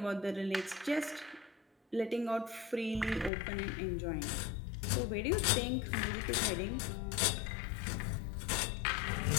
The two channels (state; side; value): drops out; right; at 3.3 s